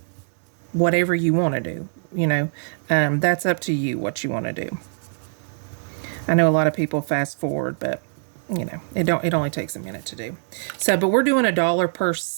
whatever you want to do. You know, that's up to you what you want to do. I know a lot of people fast forward, but you know, it only takes a minute to do. So, but we're doing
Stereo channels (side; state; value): left; silent; digital silence